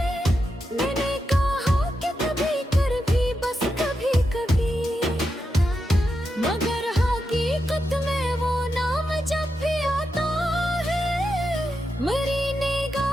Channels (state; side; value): normal; both; correlation 0.87